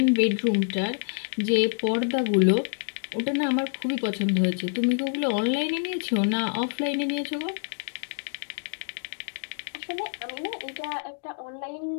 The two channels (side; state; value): right; silent; digital silence